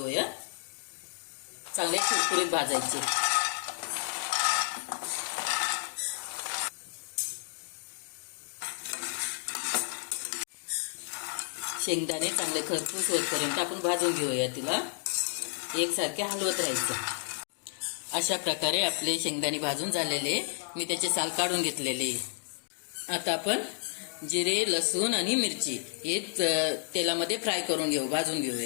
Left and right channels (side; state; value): right; silent; digital silence